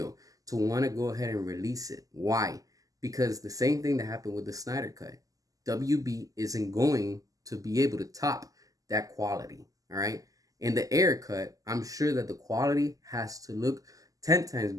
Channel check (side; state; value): left; late; 0.17 ms